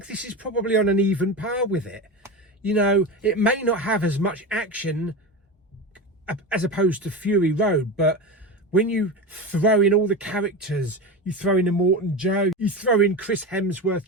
this is probably on an even par with it. You know, it may not have as much action as opposed to Fury Road, but when you throw in all the characters, you throw in Immortan Joe, you throw in Chris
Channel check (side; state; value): both; normal; correlation 0.23